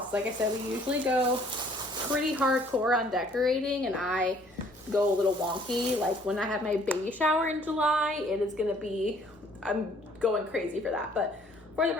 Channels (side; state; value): both; normal; correlation 0.59